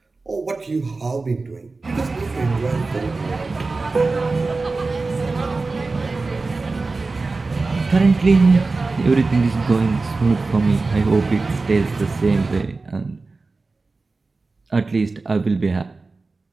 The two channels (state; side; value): quieter; left; 3.7 dB